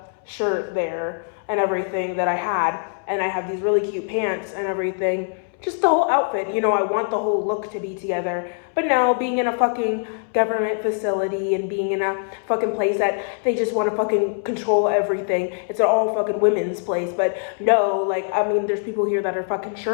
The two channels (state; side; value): silent; right; 64 dB below the other